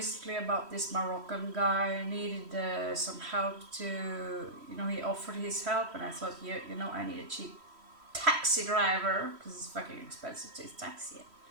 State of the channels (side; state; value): left; late; 3.1 ms